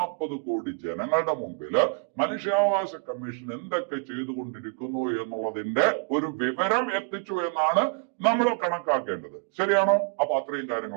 കോടി ജനങ്ങളുടെ മുമ്പില് മനുഷ്യാവകാശ കമ്മീഷൻ എന്തൊക്കെ ചെയ്തുകൊണ്ടിരിക്കുന്നു എന്നുള്ളതിന്റെ ഒരു വിവരം എത്തിച്ചു എന്നാണ് നമ്മൾ കണക്കാക്കേണ്ടത്. ശരിയാണോ? അപ്പൊ അത്രയും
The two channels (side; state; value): left; quieter; 37.6 dB